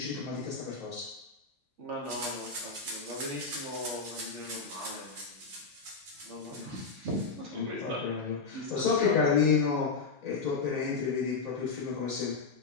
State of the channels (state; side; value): quieter; right; 4.6 dB